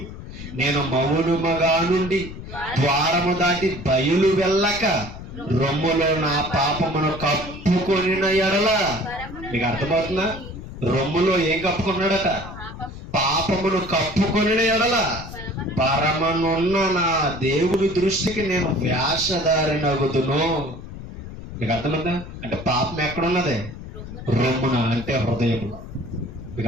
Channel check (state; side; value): noise; left; rumble, 12 dB below the sound